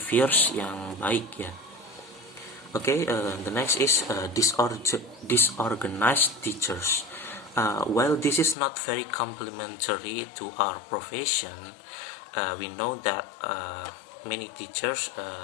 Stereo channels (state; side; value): drops out; right; at 8.6 s